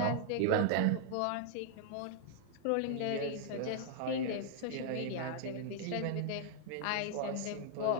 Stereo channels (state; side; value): different; both; correlation -0.01